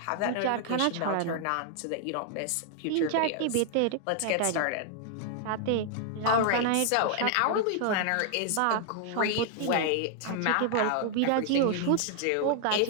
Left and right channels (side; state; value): both; different; correlation 0.00